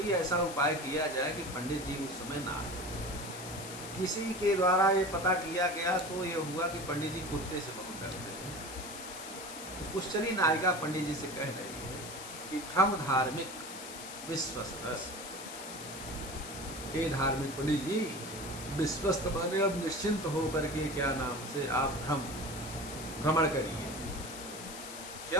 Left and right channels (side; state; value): left; noise; hiss, 11 dB below the sound